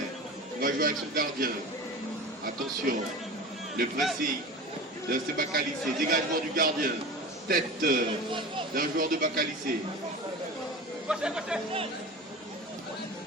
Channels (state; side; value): normal; both; correlation 0.33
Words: Il va jouer avec son gardien. Attention. Le pressing de FC Bacalissé. Dégagement du gardien. Tête d'un joueur de Bacalissé.